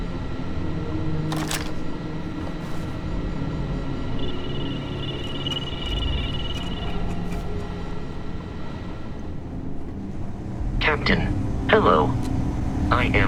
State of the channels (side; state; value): both; identical; correlation 1.00